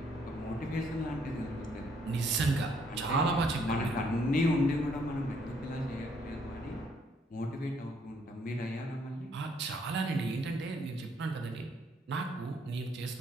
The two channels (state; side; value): normal; both; correlation 0.68